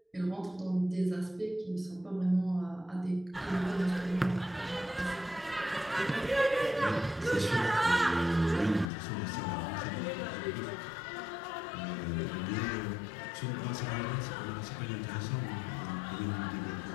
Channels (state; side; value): drops out; right; at 8.9 s